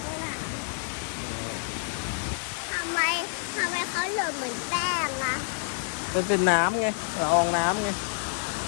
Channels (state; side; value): silent; right; digital silence